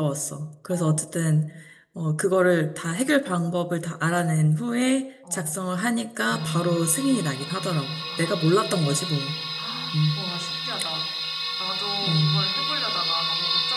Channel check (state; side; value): identical; both; correlation 1.00